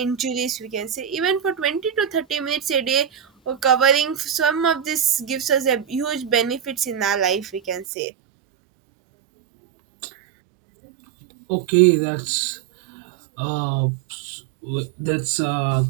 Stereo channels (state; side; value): drops out; left; at 7.9 s